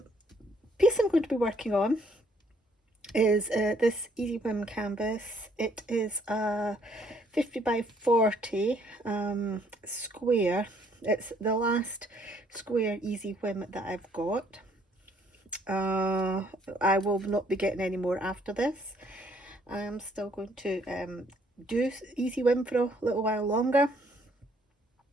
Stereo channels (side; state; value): both; normal; correlation 0.65